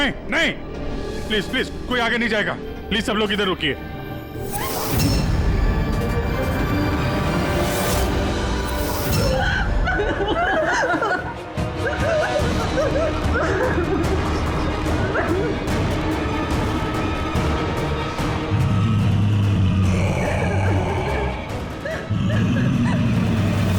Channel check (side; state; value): both; identical; correlation 1.00